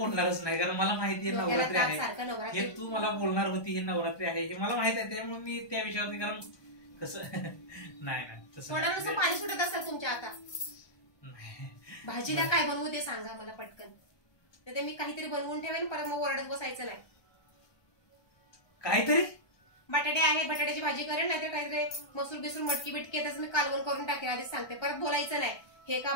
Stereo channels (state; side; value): late; right; 1.2 ms